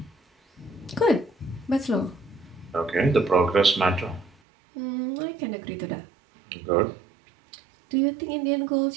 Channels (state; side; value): drops out; left; at 4.4 s